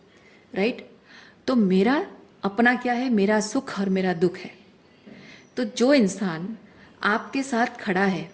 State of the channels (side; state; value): both; identical; correlation 1.00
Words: राइट? तो मेरा अपना क्या है? मेरा सुख और मेरा दुख है। तो जो इंसान आपके साथ खड़ा है,